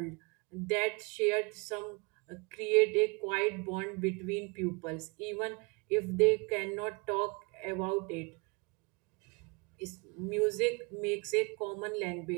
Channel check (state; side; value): quieter; left; 29.6 dB